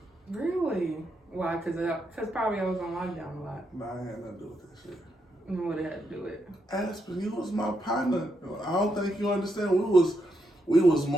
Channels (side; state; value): both; normal; correlation 0.81